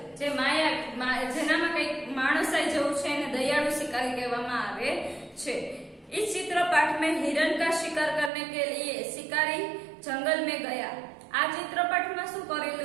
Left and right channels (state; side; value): drops out; left; at 8.3 s